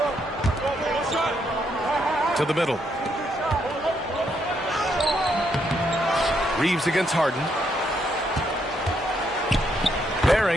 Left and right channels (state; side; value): normal; both; correlation 0.76